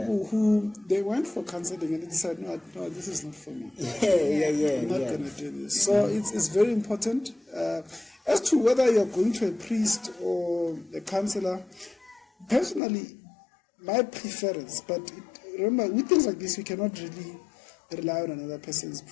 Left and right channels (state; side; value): drops out; right; at 12.8 s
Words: who they went for counseling and they decided, no, this is not for me. I'm not going to do this. So it's very important. As to whether you're going to a priest or a counselor, personally, my preference, but remember, with things like this, we cannot really rely on another person's